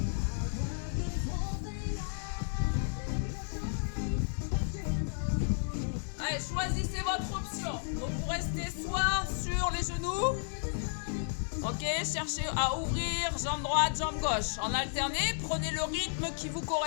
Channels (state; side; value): silent; right; 56 dB below the other